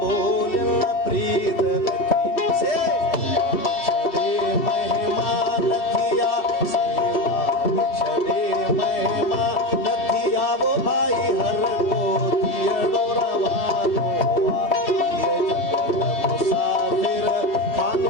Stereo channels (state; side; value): late; right; 2.7 ms